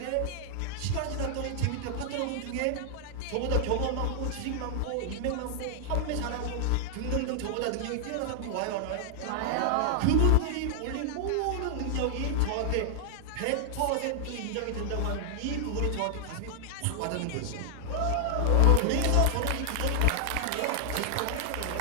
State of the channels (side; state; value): both; different; correlation 0.00